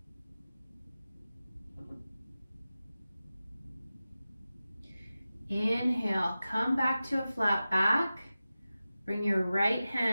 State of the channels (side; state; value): both; inverted; correlation -0.95